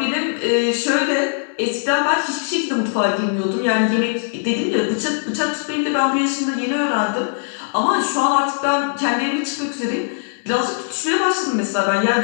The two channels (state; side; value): silent; right; digital silence